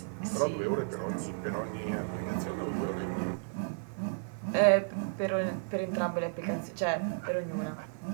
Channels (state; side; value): silent; left; digital silence